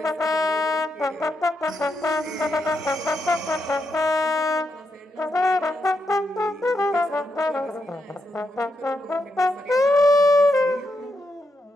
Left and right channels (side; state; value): both; normal; correlation 0.83